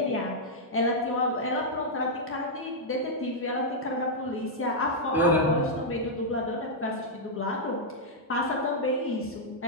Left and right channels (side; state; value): both; normal; correlation -0.06